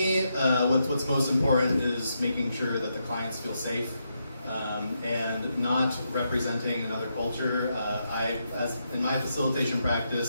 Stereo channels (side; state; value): both; inverted; correlation -0.82